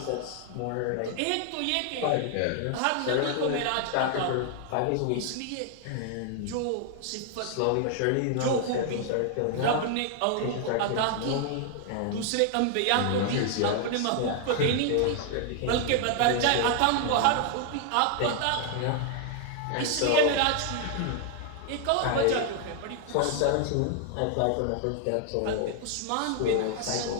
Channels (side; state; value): both; different; correlation 0.00